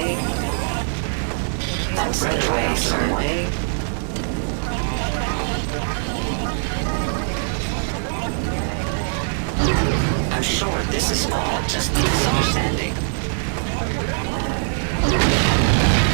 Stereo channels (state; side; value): silent; left; digital silence